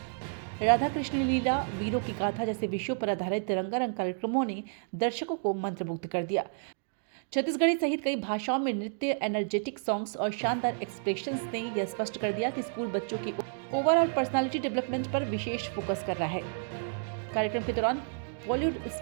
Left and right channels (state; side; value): silent; left; digital silence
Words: राधा कृष्ण लीला, वीरों की गाथा जैसे विषयों पर आधारित रंगारंग कार्यक्रमों ने दर्शकों को मंत्रमुग्ध कर दिया। छत्तीसगढ़ी सहित कई भाषाओं में नृत्य, एनर्जेटिक सॉन्ग्स और शानदार एक्सप्रेशंस ने यह स्पष्ट कर दिया कि स्कूल बच्चों की ओवरऑल पर्सनालिटी डेवलपमेंट पर विशेष फोकस कर रहा है। कार्यक्रम के दौरान बॉलीवुड